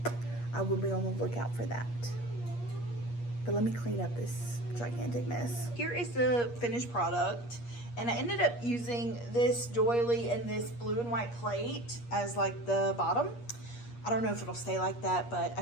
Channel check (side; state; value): right; late; 8.4 ms